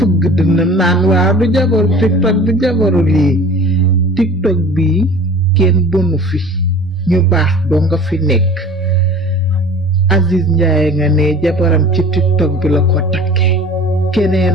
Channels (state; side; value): normal; both; correlation 0.43